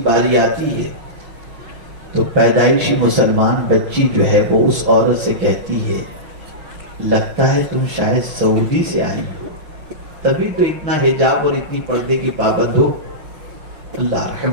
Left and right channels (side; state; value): left; late; 6.4 ms